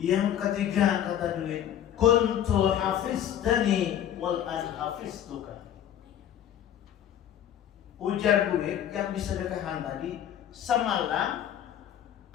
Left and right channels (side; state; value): right; quieter; 10.5 dB